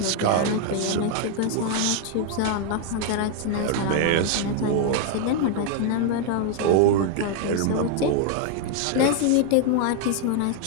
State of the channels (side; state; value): both; different; correlation 0.00